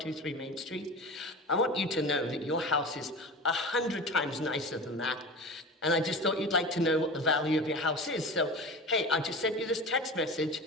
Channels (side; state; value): both; normal; correlation 0.32